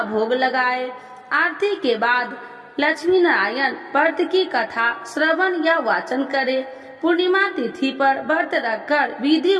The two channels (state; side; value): identical; both; correlation 1.00